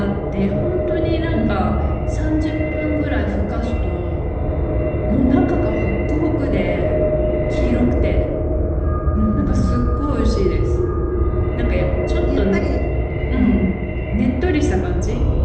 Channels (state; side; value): identical; both; correlation 1.00